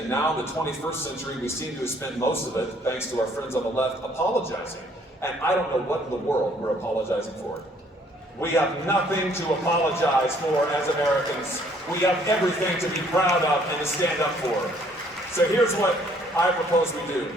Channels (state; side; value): normal; both; correlation 0.62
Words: now in the 21st century, we seem to have spent most of it, thanks to our friends on the left, apologizing. And I don't know what in the world we're apologizing for. We have nothing to apologize for as Americans. We have everything to be proud of and to stand up for. So here's what I propose we do.